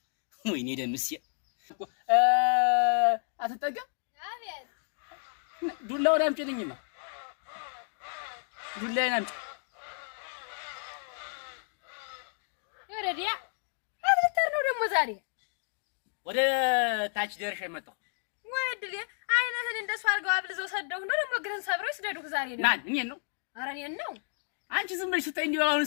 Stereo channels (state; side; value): silent; right; 57 dB below the other